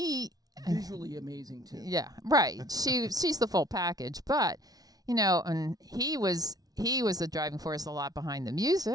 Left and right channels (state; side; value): late; left; 0.18 ms